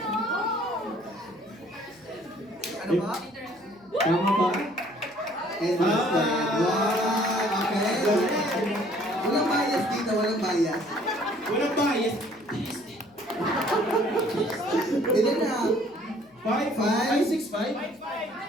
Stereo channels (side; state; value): left; noise; hum, 29 dB below the sound